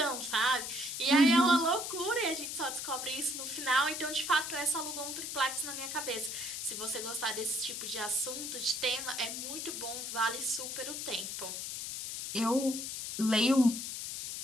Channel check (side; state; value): left; noise; hiss, 5 dB below the sound